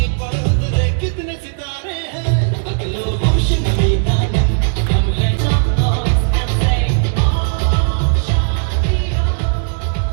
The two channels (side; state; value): left; silent; digital silence